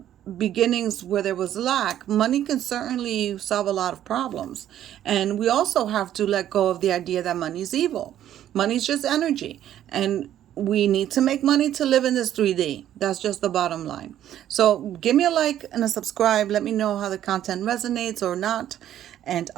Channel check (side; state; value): left; quieter; 11.5 dB